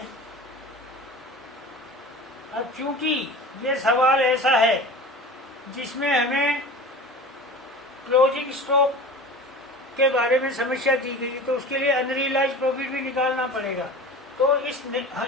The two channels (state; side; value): normal; both; correlation 0.36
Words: अब चूंकि ये सवाल ऐसा है जिसमें हमें क्लोजिंग स्टॉक के बारे में समस्या दी गई, तो उसके लिए अनरियलाइज प्रॉफिट भी निकालना पड़ेगा। तो